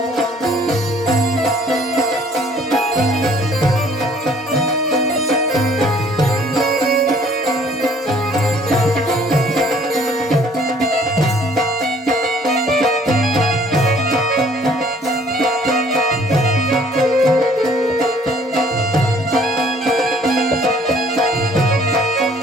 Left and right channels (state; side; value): normal; both; correlation 0.58